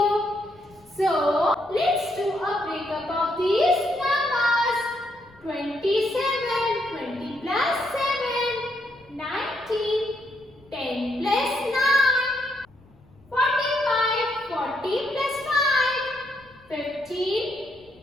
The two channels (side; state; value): left; noise; rumble, 28 dB below the sound